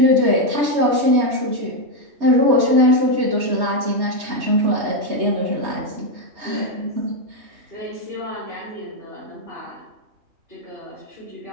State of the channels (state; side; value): late; left; 3.2 ms